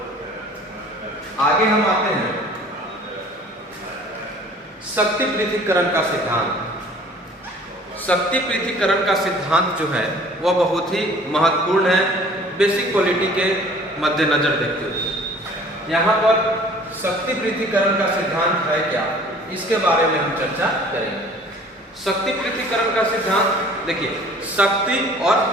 आगे हम आते हैं शक्ति पृथक्करण का सिद्धांत। शक्ति पृथक्करण का सिद्धांत जो है वह बहुत ही महत्वपूर्ण है बेसिक पॉलिटी के मद्देनजर देखते हुए। यहाँ पर शक्ति पृथक्करण का सिद्धांत है क्या, इसके बारे में हम चर्चा करेंगे। शक्ति पृथक्करण का सिद्धांत देखिए, शक्ति और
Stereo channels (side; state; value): both; normal; correlation 0.50